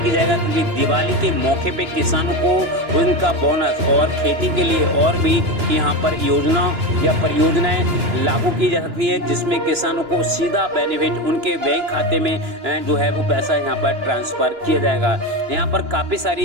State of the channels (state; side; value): late; left; 2.9 ms